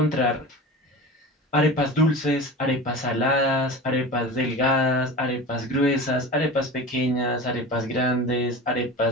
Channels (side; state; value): both; normal; correlation 0.32